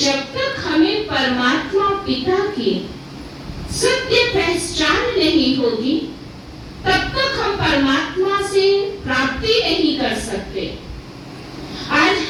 तक हमें परमात्मा पिता की सत्य पहचान नहीं होगी तब तक हम परमात्मा से प्राप्ति नहीं कर सकते। आज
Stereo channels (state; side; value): identical; both; correlation 1.00